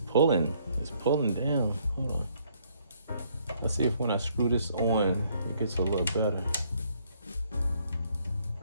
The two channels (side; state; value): both; inverted; correlation -0.67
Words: down. Hold on. Let's see if when I screw this on, it gets a little better.